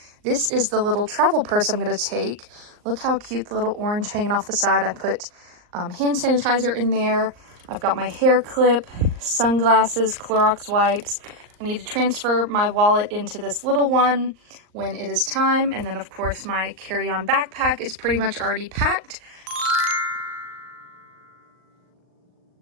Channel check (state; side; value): late; left; 39 ms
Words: This is the little travel purse I'm going to take. Look how cute the little orange hanging off the side. I put hand sanitizer in there. I've got my hair clip, sunglasses, Clorox wipes. I need to transfer my wallet into this little one when it is time. And then, of course, my carry-on backpack is pretty much already packed.